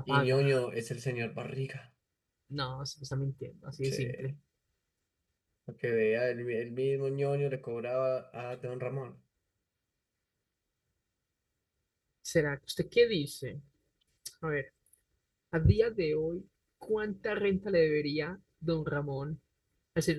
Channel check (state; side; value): identical; both; correlation 1.00